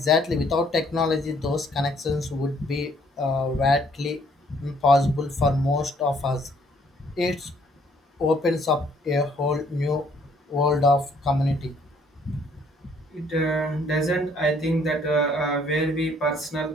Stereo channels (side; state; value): both; normal; correlation 0.64